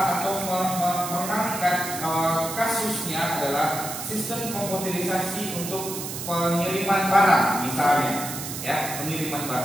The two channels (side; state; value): right; noise; hiss, 7 dB below the sound